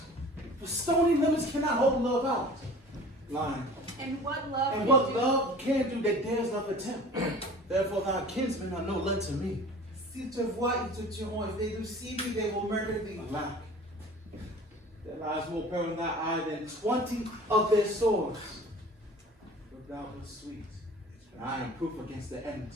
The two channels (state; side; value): normal; both; correlation 0.43